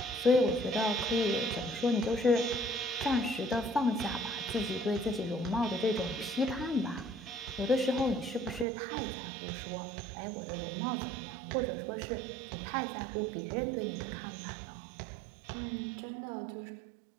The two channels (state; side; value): drops out; left; at 8.7 s